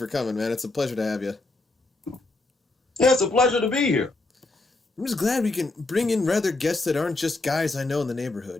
coming, man. It's a pleasure to have you. Yeah, it's a pleasure to be here. I'm just glad we can bring in rather guests that aren't just guys I know in the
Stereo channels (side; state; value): right; quieter; 3.1 dB